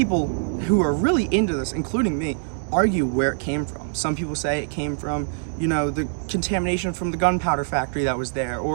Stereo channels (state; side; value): silent; left; 61 dB below the other